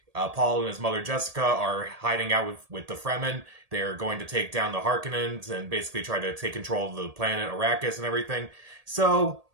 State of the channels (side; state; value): left; late; 1.8 ms